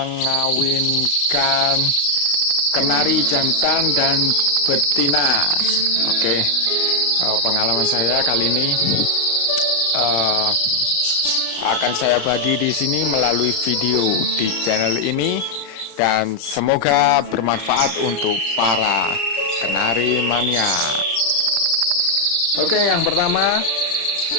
kenari jantan dan betina. Oke, pengalaman saya kali ini akan saya bagi di sini melalui video di channel ini, dan semoga bermanfaat untuk para kenari mania. Oke, yang pertama,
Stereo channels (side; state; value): right; late; 35 ms